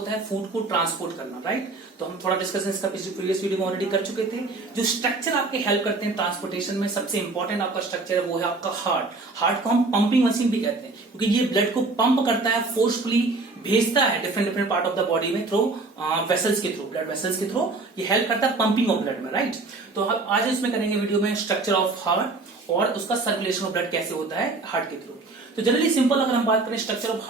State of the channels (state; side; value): quieter; left; 3.5 dB